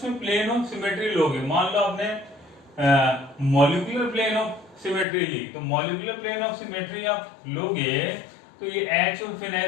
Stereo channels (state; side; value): drops out; right; at 5.1 s